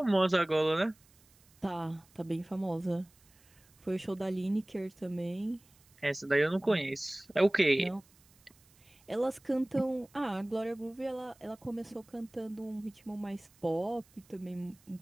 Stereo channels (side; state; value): right; noise; hiss, 30 dB below the sound